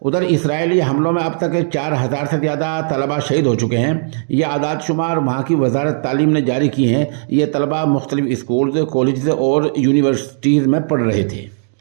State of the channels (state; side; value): silent; left; digital silence